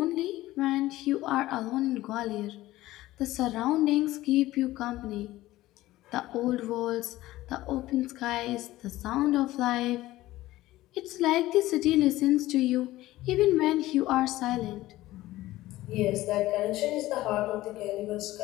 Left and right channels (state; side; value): quieter; right; 16.6 dB